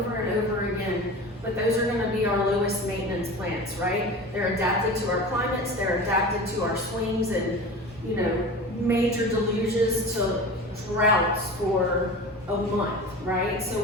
and over again. but those are gonna be our lowest maintenance plants, right? They're adapted to our climates, they're adapted to our swings and, you know, major deluges to droughts for a month, right? So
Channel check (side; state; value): both; normal; correlation 0.33